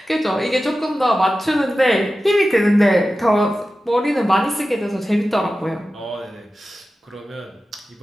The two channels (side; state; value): both; normal; correlation 0.94